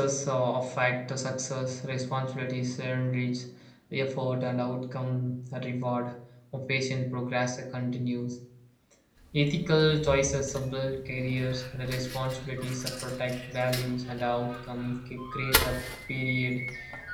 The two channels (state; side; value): identical; both; correlation 1.00